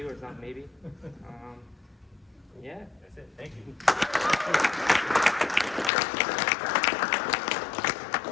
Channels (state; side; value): drops out; right; at 5.9 s